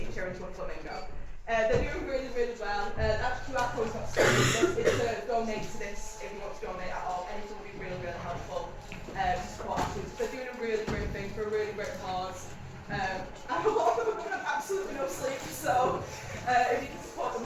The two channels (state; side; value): identical; both; correlation 1.00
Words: her, into a flamingo. They're doing really, really well. That QR code's not saved. It's to donate to this if you want to donate at all. Anything will be really, really helpful to support our students. They're doing a really great thing for a really great cause. And a lot of them have absolutely no sleep, so if you can support them,